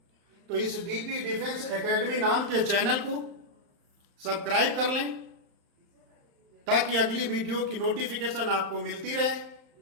तो इस डीपी डिफेंस एकेडमी नाम के चैनल को सब्सक्राइब कर लें ताकि अगली वीडियो की नोटिफिकेशन आपको मिलती रहे।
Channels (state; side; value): late; left; 35 ms